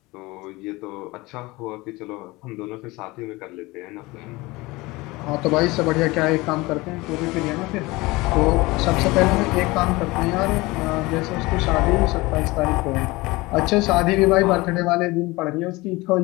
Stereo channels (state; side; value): quieter; right; 21.9 dB